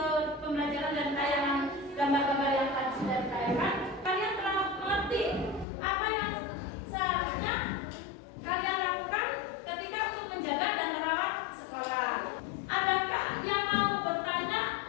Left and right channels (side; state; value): right; drops out; at 5.7 s